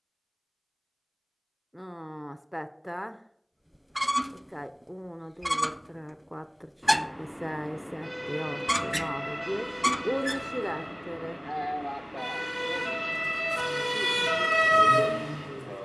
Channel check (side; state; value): both; identical; correlation 1.00